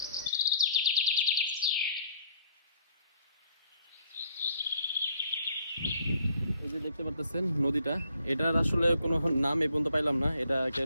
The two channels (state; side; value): inverted; both; correlation -0.63